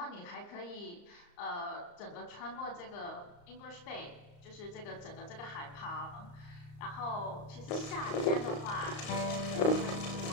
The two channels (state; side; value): late; right; 34 ms